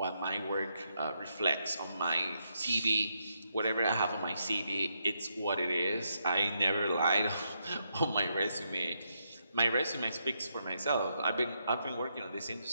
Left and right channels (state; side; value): inverted; both; correlation -0.80